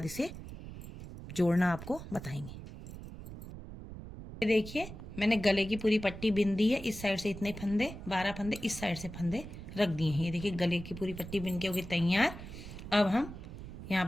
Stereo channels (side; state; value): right; noise; rumble, 12 dB below the sound